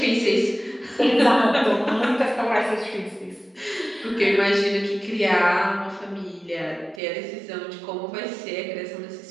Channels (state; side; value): drops out; left; at 7.0 s